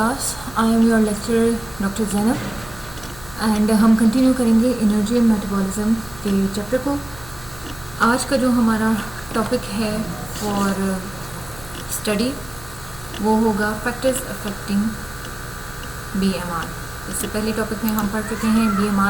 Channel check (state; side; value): noise; left; hum, 17 dB below the sound